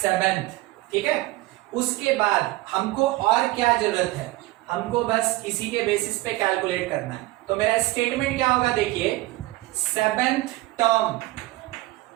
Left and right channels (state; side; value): quieter; left; 18.9 dB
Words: ठीक है, उसके बाद हमको और क्या जरूरत है, हमको बस इसी के बेसिस पे कैलकुलेट करना है। तो मेरा स्टेटमेंट क्या होगा देखिए, 7th term